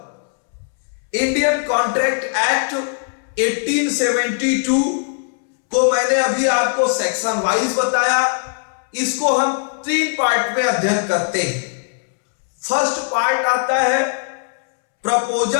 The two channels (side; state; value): right; silent; 66 dB below the other